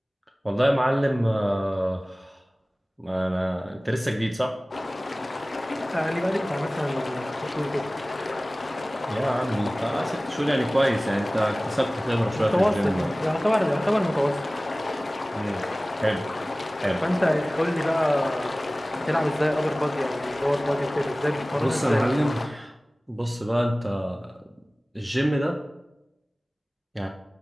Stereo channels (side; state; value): both; normal; correlation 0.98